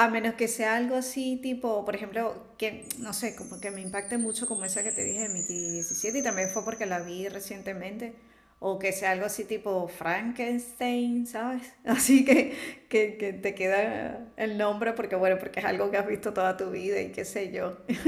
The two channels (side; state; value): both; identical; correlation 1.00